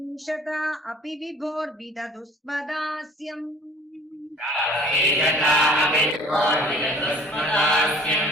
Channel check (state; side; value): normal; both; correlation 0.50